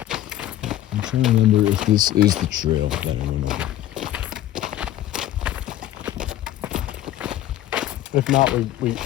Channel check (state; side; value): quieter; right; 13.2 dB